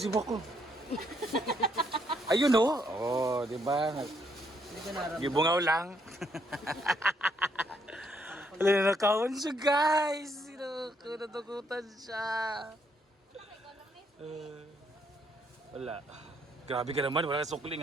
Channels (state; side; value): normal; both; correlation 0.72